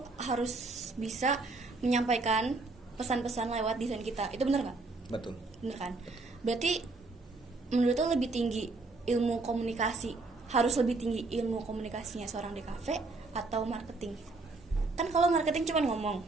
harus bisa menyampaikan pesan-pesan lewat desain kita. Itu benar nggak? Betul. Bener kan? Berarti menurut lo lebih tinggi ilmu komunikasi, harus lebih tinggi ilmu komunikasinya seorang di kafe atau marketing? Kan kalau marketing cuma ngomong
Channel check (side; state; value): left; quieter; 3.5 dB